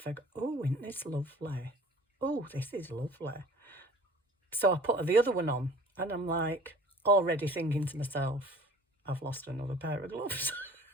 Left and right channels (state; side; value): normal; both; correlation 0.47